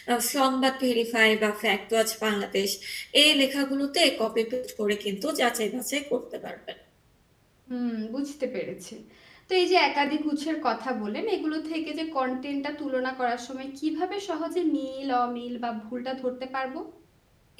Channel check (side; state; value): both; identical; correlation 1.00